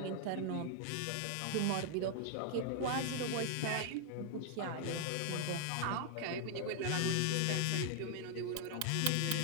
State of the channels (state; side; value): different; both; correlation 0.00